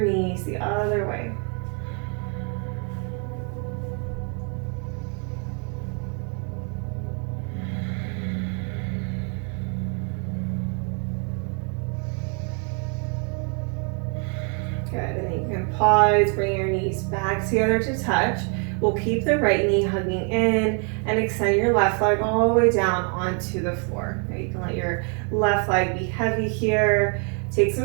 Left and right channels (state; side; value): quieter; left; 38.7 dB